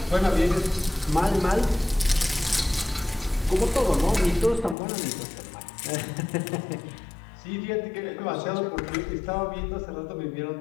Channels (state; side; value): drops out; right; at 4.8 s